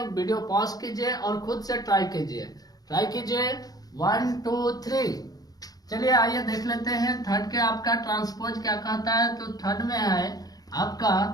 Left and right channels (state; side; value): late; right; 0.18 ms